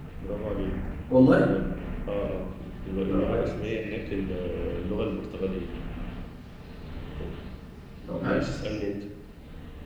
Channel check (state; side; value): identical; both; correlation 1.00